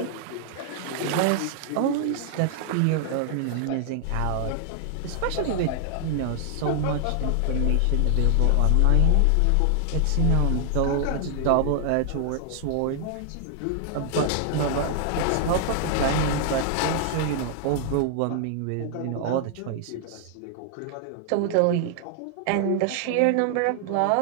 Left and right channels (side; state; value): both; different; correlation 0.00